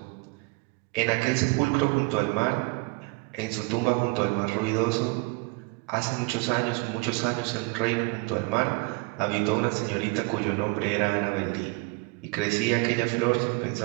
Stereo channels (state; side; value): quieter; left; 27.7 dB